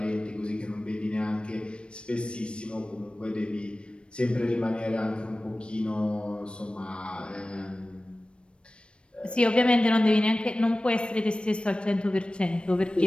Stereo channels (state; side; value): late; right; 0.057 ms